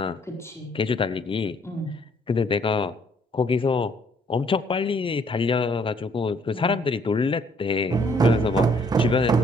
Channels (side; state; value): both; normal; correlation 0.64